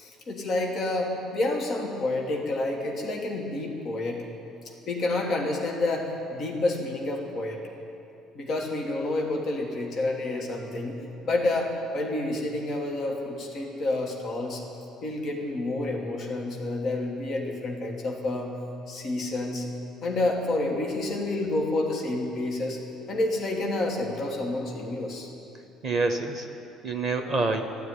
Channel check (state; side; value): normal; both; correlation 0.72